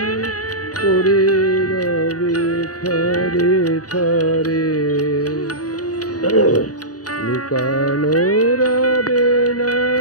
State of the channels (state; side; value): late; right; 0.68 ms